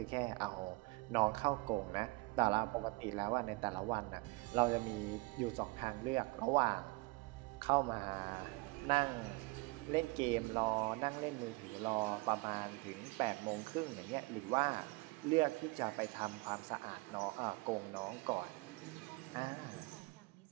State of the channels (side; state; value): left; quieter; 25.2 dB